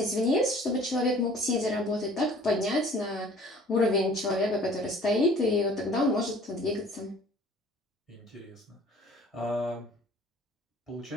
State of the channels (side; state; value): both; normal; correlation 0.51